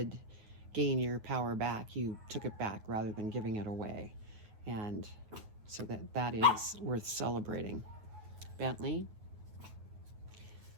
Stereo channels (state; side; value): late; left; 9.3 ms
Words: gain your power back. You took it back rather than giving it away. And so that is worth celebrating. Bentley.